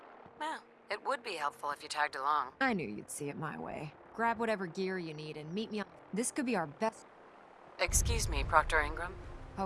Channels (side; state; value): both; identical; correlation 1.00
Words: Well, it would be helpful if you tagged along. I knew you'd see it my way. Grab whatever gear you need and meet me on... This could be our best... Excuse me, Proctor Ingram.